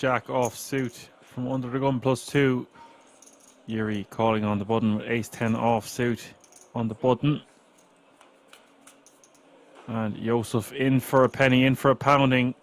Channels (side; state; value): both; identical; correlation 1.00